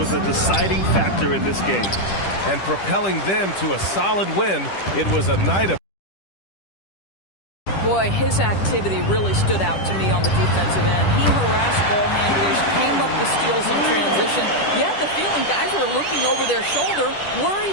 a deciding factor in this game. And propelling them to a solid win, it was a night of... Boy, his activity really stood out to me on the defensive end. He harassed ball handlers, came up with steals in transition. You had the feeling guys were looking over their shoulder,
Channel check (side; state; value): right; late; 10 ms